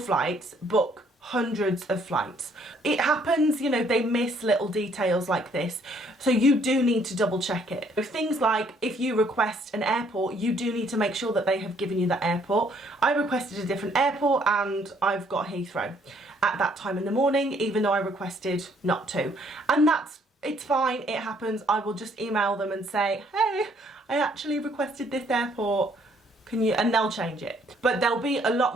book hundreds of flights. It happens, you know, they miss little details like this, so you do need to double check it. Things like if you request an airport, you do need to make sure that they have given you that airport. I requested a different airport and I've got Heathrow at that time in the morning, even though I requested not to. And it's fine, it happens. I will just email them and say, hey, I actually requested this airport, can you, and they'll change it. But they'll be a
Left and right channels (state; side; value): normal; both; correlation 0.65